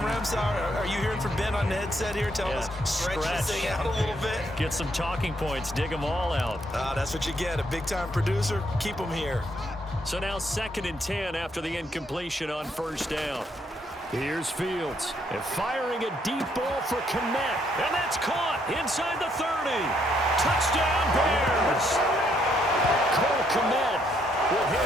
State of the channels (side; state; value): both; normal; correlation 0.72